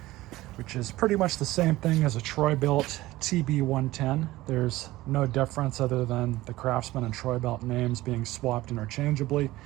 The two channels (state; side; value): quieter; left; 17.6 dB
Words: which is pretty much the same thing as a Troy-Bilt TB110. There's no difference other than the Craftsman and Troy-Bilt names being swapped interchangeably.